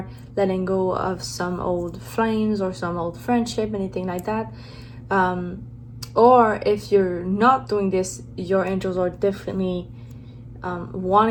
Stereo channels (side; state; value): both; identical; correlation 1.00